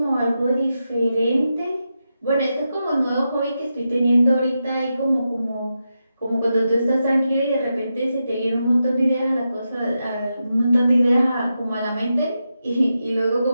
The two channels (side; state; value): both; inverted; correlation -0.88